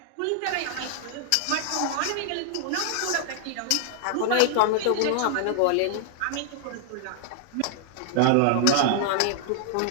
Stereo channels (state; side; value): different; both; correlation 0.00